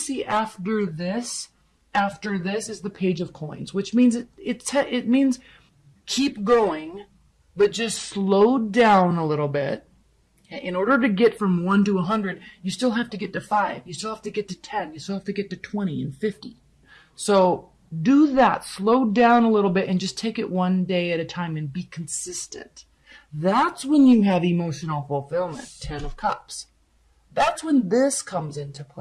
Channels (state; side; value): identical; both; correlation 1.00